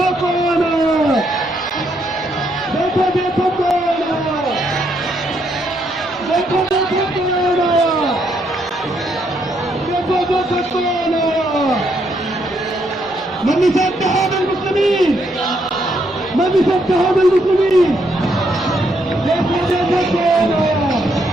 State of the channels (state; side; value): normal; both; correlation 0.75